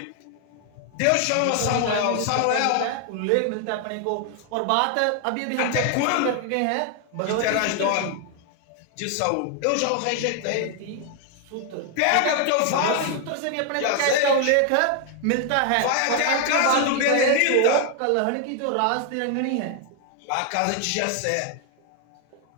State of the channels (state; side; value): different; both; correlation 0.00